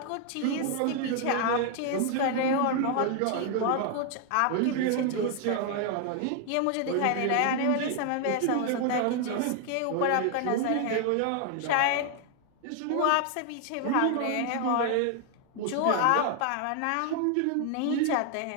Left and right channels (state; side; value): different; both; correlation 0.00